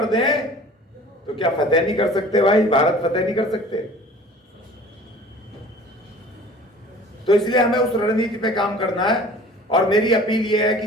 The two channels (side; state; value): both; normal; correlation 0.46